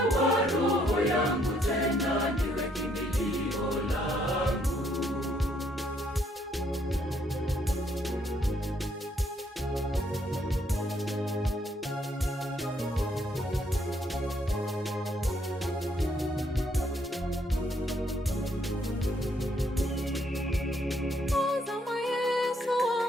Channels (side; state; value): both; normal; correlation 0.70